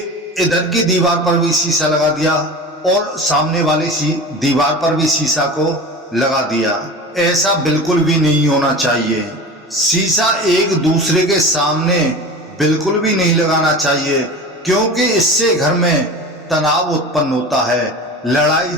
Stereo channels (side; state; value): both; normal; correlation 0.33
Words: इधर की दीवार पर भी शीशा लगा दिया और सामने वाली दीवार पर भी शीशा को लगा दिया। ऐसा बिल्कुल भी नहीं होना चाहिए। शीशा एक दूसरे के सामने बिल्कुल भी नहीं लगाना चाहिए, क्योंकि इससे घर में तनाव उत्पन्न होता है, लड़ाई